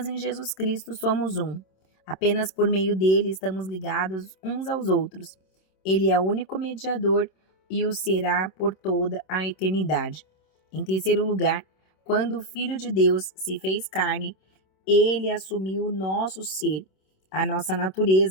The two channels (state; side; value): late; right; 27 ms